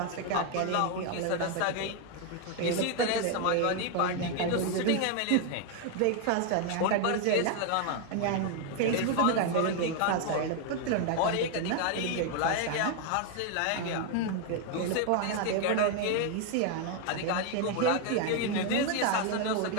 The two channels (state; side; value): different; both; correlation 0.01